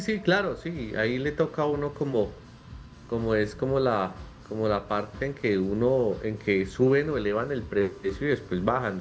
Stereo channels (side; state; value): both; identical; correlation 1.00